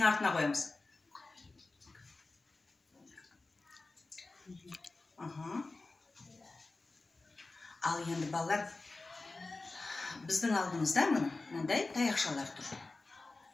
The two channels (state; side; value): quieter; right; 3.4 dB